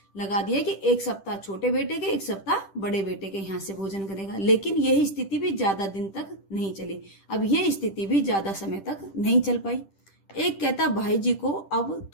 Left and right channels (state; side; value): late; right; 10 ms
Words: लगा दिया कि एक सप्ताह छोटे बेटे के, एक सप्ताह बड़े बेटे के यहाँ से भोजन करेगा। लेकिन यही स्थिति भी ज्यादा दिन तक नहीं चली। अब यह स्थिति भी ज्यादा समय तक नहीं चल पाई। एक कहता, भाई जी को अब